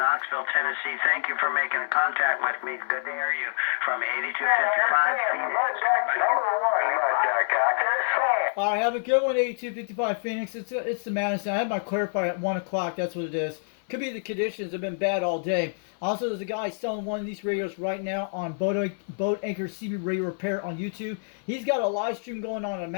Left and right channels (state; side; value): silent; right; 60 dB below the other